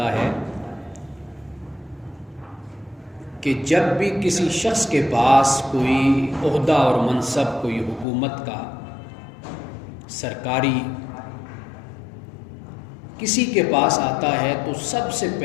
ہے کہ جب بھی کسی شخص کے پاس کوئی عہدہ اور منصب، کوئی حکومت کا سرکاری کسی کے پاس آتا ہے، تو سب سے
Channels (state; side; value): drops out; right; at 8.1 s